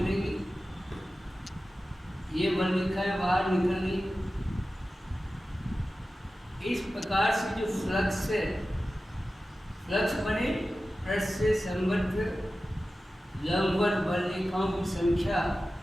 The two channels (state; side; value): normal; both; correlation 0.95